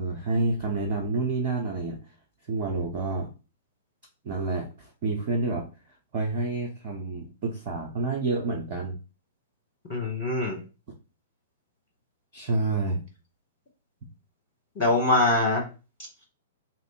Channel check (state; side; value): inverted; both; correlation -0.36